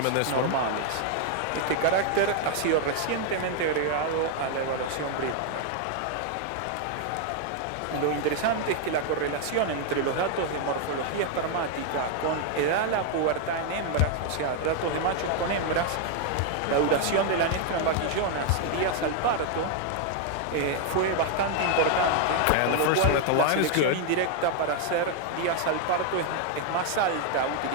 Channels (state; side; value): different; both; correlation 0.00